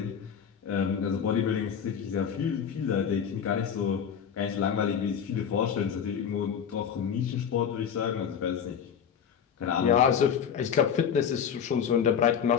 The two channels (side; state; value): right; quieter; 7.8 dB